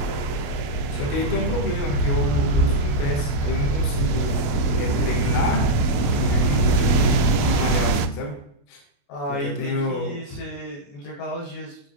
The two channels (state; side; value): late; right; 28 ms